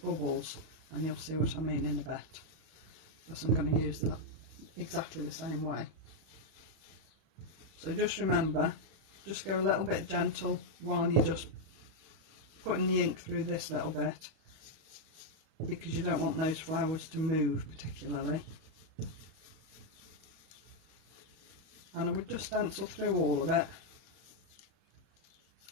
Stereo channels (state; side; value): late; left; 31 ms